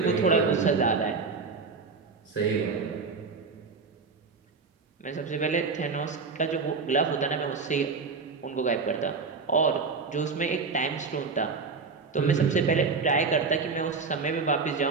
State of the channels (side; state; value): left; quieter; 4.7 dB